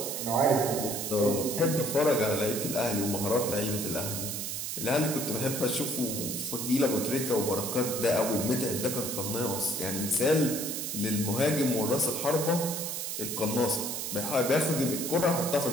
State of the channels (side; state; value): right; noise; hiss, 4 dB below the sound